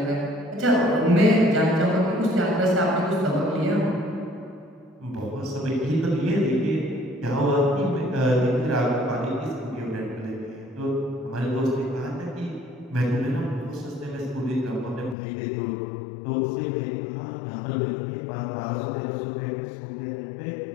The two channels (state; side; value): drops out; right; at 15.2 s